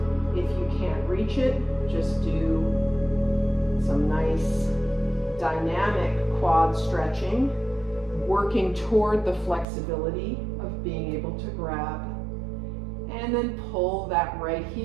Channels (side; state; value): left; drops out; at 9.7 s